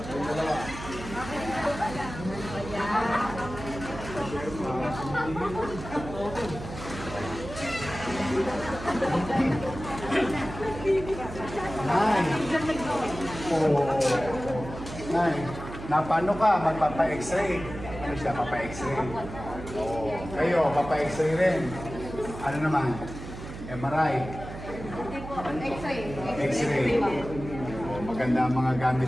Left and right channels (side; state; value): right; noise; hum, 11 dB below the sound